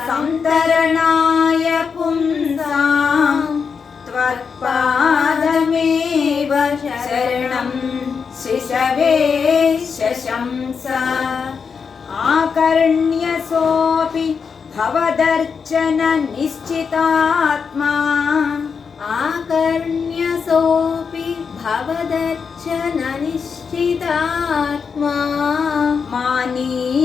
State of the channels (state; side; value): quieter; right; 5.9 dB